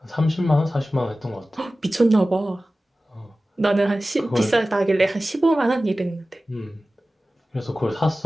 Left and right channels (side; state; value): both; normal; correlation 0.96